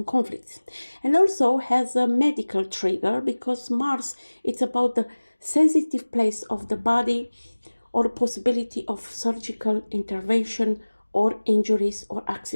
conflicts. And also has a medical trigger because Mars is about the sensitive place of the body or possibility of surgical intervention or injuries or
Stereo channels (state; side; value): inverted; both; correlation -1.00